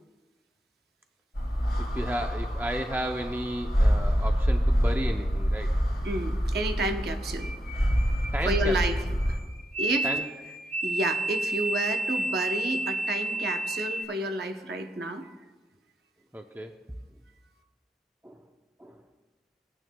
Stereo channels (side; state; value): both; normal; correlation 0.83